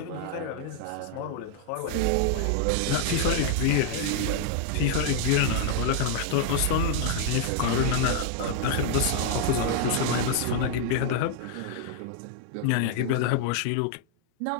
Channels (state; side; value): different; both; correlation 0.00